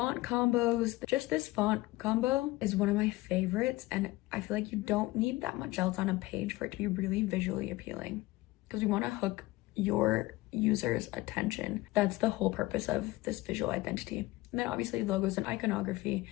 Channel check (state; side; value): quieter; right; 19.1 dB